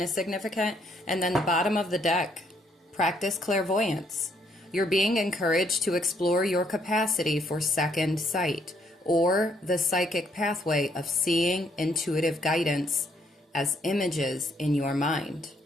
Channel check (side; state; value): both; normal; correlation 0.70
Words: significant. And then the bottom of the deck, practice clairvoyance. You're being encouraged to explore your capacity for second sight, or the psychic pathway of seeing intuitive guidance as images in your mind.